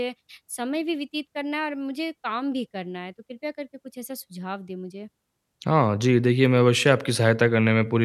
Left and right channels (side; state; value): both; identical; correlation 1.00